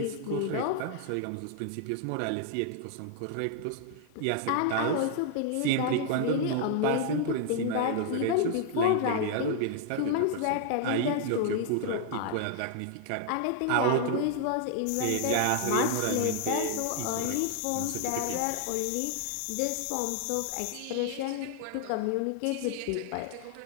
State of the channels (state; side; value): different; both; correlation 0.00